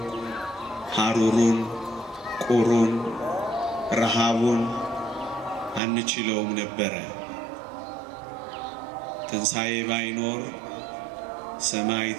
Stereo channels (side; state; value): left; drops out; at 5.8 s